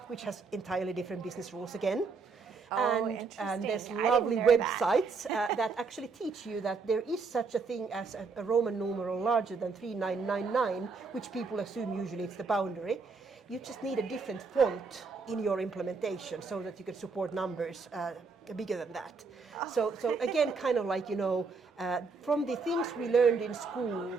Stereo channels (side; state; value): left; quieter; 4.7 dB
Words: which has entirely different business rules again. And there's lovely websites that actually teach you that there is such a thing as a Roman numeral larger than 3999, which people assume usually it's the boundary. You just need a different font in your implementation so that you can support numbers bigger than that. So again, kind of like, from the things we learned in school,